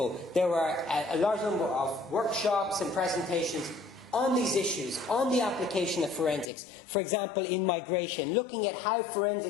there were a large number of workshops and presentations on these issues, on the application of forensics. For example, in migration, looking at how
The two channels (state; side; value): drops out; right; at 6.5 s